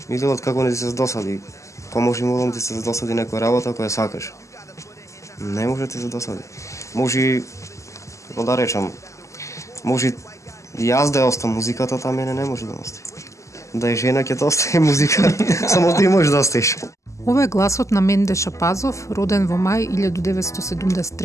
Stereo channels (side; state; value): right; late; 0.15 ms